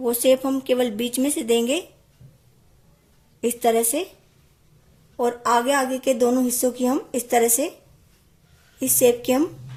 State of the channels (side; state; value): both; identical; correlation 1.00